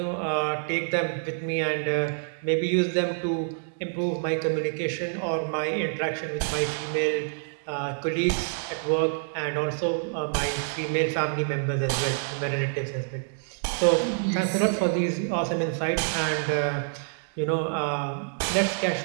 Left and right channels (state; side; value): silent; left; digital silence